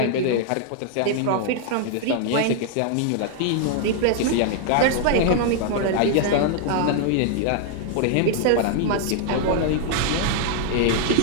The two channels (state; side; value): different; both; correlation 0.00